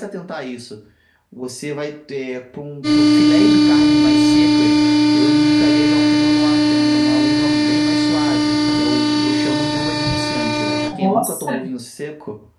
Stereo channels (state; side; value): identical; both; correlation 1.00